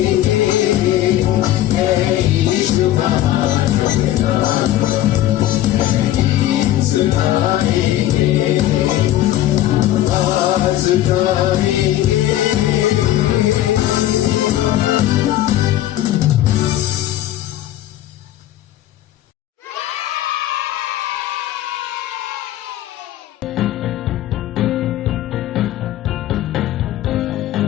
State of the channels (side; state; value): right; quieter; 13.6 dB